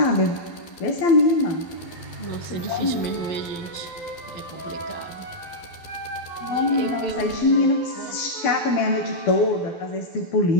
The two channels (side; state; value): right; late; 12 ms